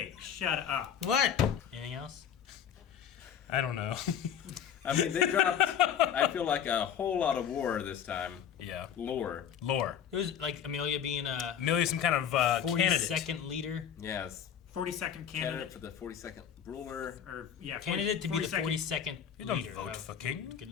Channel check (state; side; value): quieter; right; 8.7 dB